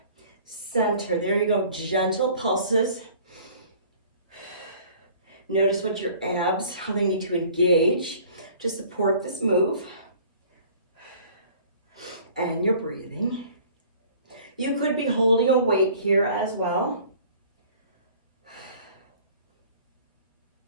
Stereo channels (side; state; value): both; inverted; correlation -0.50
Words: center. There you go, gentle pulses. Notice what your abs, how they need to engage to support this move. And your breathing. You could be holding a weight here as well.